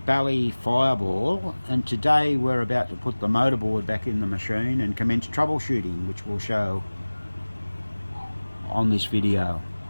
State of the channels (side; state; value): both; inverted; correlation -1.00